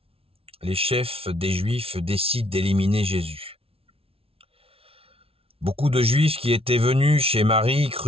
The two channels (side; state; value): left; late; 0.27 ms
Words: Les chefs des Juifs décident d'éliminer Jésus. Beaucoup de Juifs qui étaient venus chez Marie